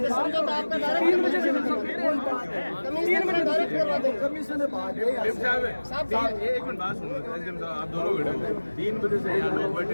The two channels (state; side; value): inverted; both; correlation -1.00